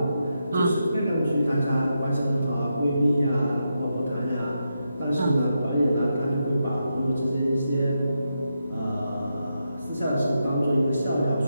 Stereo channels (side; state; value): both; inverted; correlation -0.85